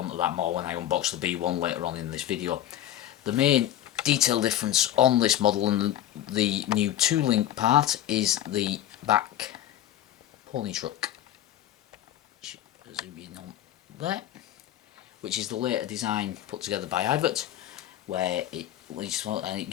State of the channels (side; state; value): right; quieter; 12.3 dB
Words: that more when I unbox the B1 later on in this video. The main detail difference on this model and the new 2-link part is the back pony truck. Zoom in on there, which is the later design put together by Ivert, where it